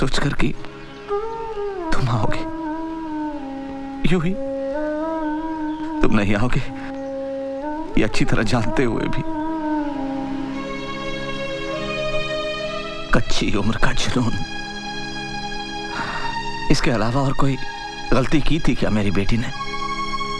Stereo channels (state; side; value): noise; left; hum, 29 dB below the sound